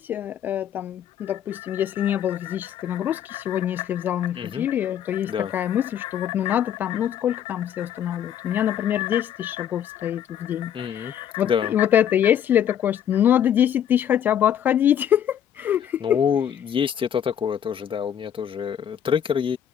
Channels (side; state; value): right; quieter; 9.7 dB